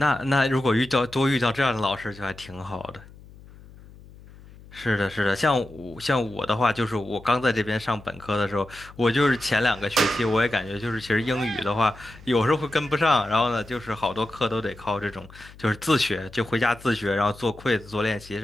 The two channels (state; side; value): noise; left; hum, 21 dB below the sound